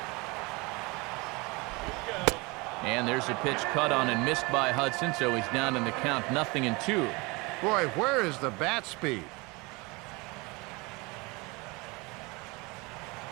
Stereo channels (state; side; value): quieter; left; 25.9 dB